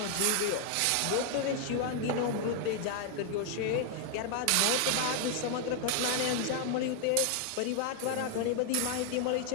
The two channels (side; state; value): both; different; correlation 0.00